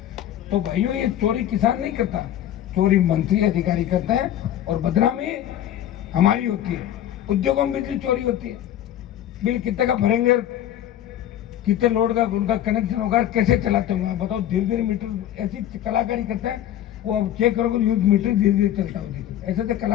तो भाइयों ये चोरी किसान नहीं करता, चोरी मंत्री अधिकारी करते हैं और बदनामी हमारी होती है। उद्योगों में बिजली चोरी होती है। बिल कितने का भरेंगे, कितने लोड का उनका कनेक्शन होगा, कैसे चलाते होंगे बताओ? धीरे धीरे मीटर, ऐसी कलाकारी करते हैं वो। अब चेक करोगे न्यूज मीटर धीरे धीरे चलता हो, देखो ऐसे तो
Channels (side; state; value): right; quieter; 11.6 dB